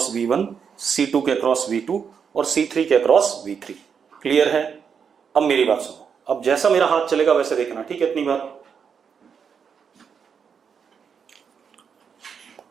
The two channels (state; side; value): quieter; left; 6.7 dB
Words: V1, C2 के अक्रॉस V2 और C3 के अक्रॉस V3। क्लियर है? अब मेरी बात सुनो, अब जैसा मेरा हाथ चलेगा वैसे देखना, ठीक है? इतनी बात।